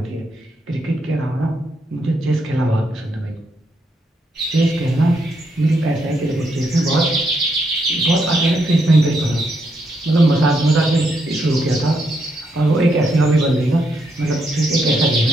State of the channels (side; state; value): both; normal; correlation 0.78